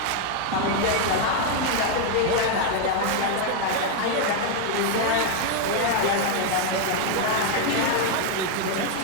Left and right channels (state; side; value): different; both; correlation 0.00